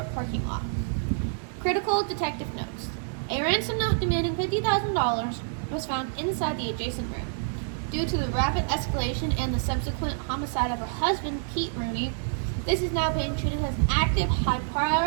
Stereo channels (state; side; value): silent; left; digital silence